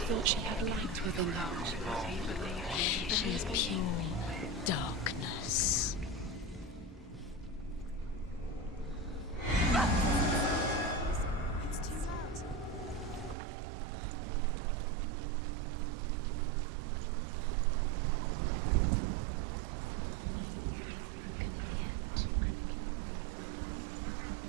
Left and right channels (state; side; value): drops out; left; at 13.4 s